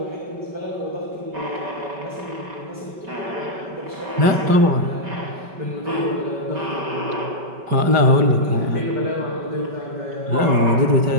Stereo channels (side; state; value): left; late; 5.2 ms